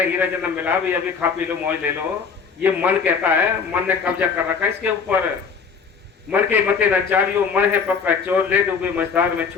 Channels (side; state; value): right; quieter; 5.8 dB